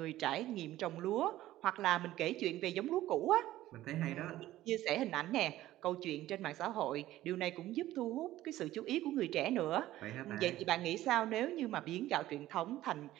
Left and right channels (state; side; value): quieter; left; 14.9 dB